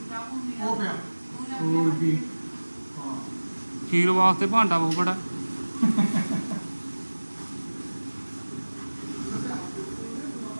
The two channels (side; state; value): both; inverted; correlation -1.00